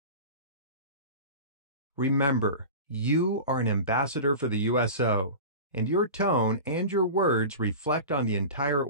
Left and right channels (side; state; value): both; inverted; correlation -0.32